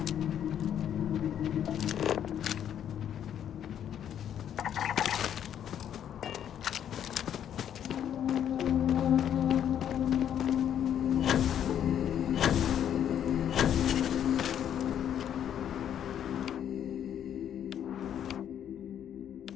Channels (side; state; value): right; quieter; 9.7 dB